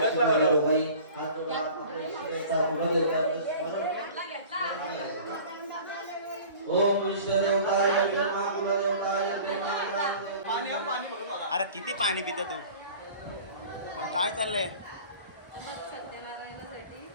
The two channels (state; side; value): inverted; both; correlation -0.43